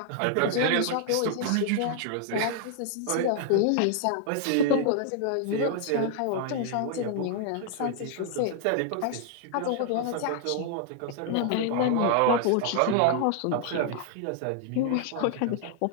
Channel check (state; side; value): different; both; correlation 0.00